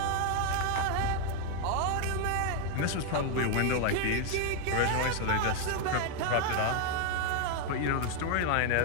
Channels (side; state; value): both; different; correlation 0.00